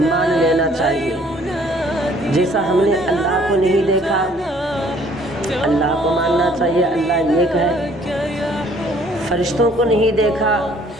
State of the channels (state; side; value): noise; right; rumble, 27 dB below the sound